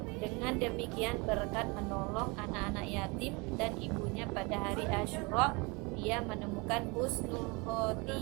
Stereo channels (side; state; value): left; quieter; 28.0 dB